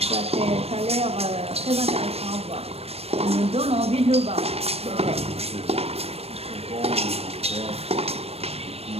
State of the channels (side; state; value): left; late; 0.29 ms